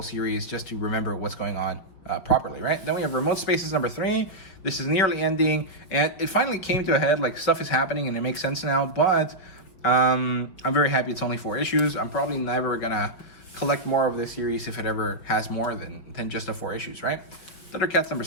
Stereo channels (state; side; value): late; right; 5.6 ms